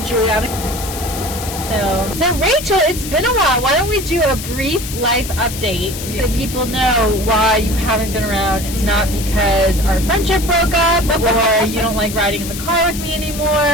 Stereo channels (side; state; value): left; noise; hiss, 9 dB below the sound